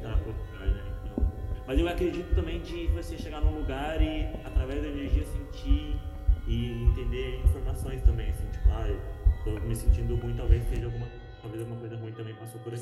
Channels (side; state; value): both; identical; correlation 1.00